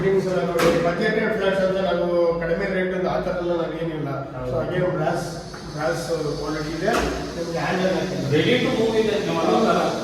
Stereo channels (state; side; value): identical; both; correlation 1.00